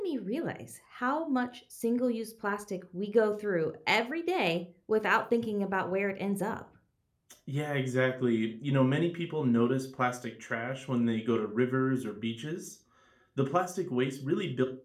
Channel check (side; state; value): both; identical; correlation 1.00